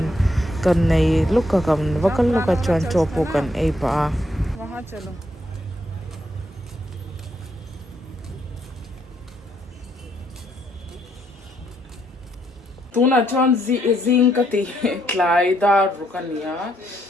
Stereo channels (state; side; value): normal; both; correlation 0.74